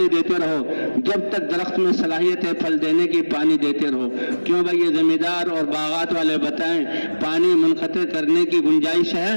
دیتے رہو، جب تک درخت میں صلاحیت ہے پھل دینے کی پانی دیتے رہو۔ کیوں بھائی یہ زمیندار اور باغات والے بتائیں پانی منقطع کرنے کی گنجائش ہے؟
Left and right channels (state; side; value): inverted; both; correlation -1.00